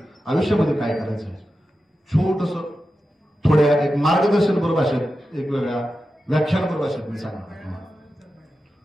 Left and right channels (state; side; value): normal; both; correlation 0.91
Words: आयुष्यामध्ये काय करायचं आहे. छोटस थोड्या एक मार्गदर्शनपर भाषेत एक वेगळ्या व्याख्यानपर भाषेत मी सांगणार.